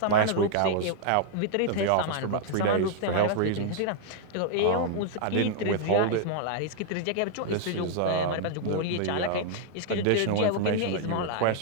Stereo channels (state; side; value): different; both; correlation -0.01